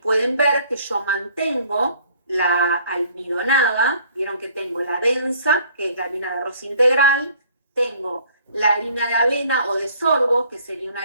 ver que yo mantengo la almidonada, vieron que tengo la densa, que es la harina de arroz integral, tengo la harina de avena o de sorgo, que sería una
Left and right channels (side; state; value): both; inverted; correlation -0.57